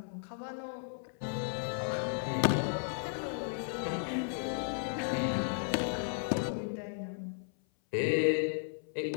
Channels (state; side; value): silent; right; 55 dB below the other